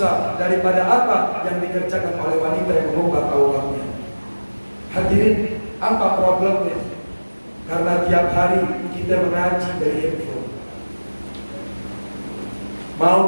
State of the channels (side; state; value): both; inverted; correlation -1.00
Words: daripada apa yang dikerjakan oleh wanita yang mengubah auratnya. Hadirin, apa problemnya? Karena tiap hari kita mengaji dari handphone. Mau